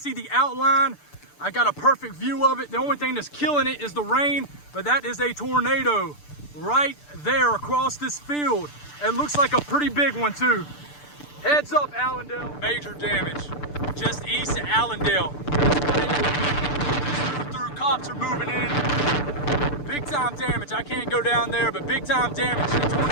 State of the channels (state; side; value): late; right; 6.8 ms